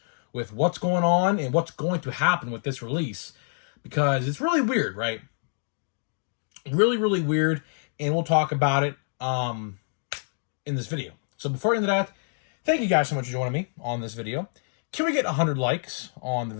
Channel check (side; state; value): right; silent; digital silence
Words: with what's going on and what's going to happen with this release, because it's really weird, right? Really weird, and we'll talk about it in this video. So before into that, thank you guys so much for joining me on this video. Can we get 100 likes on the